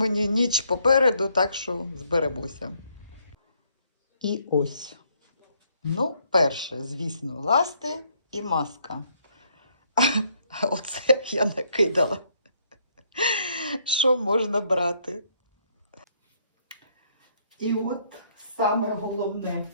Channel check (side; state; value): both; inverted; correlation -0.69